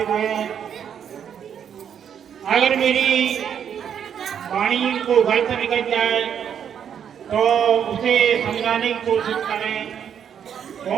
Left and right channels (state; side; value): quieter; left; 8.4 dB